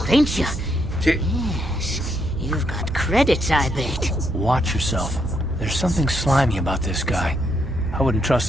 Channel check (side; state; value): right; noise; hum, 8 dB below the sound